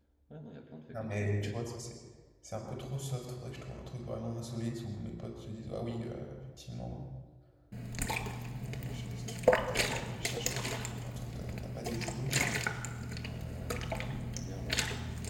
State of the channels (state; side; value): identical; both; correlation 1.00